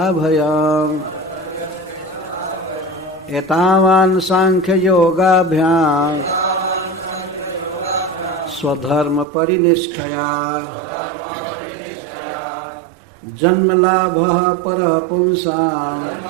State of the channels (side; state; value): left; drops out; at 9.2 s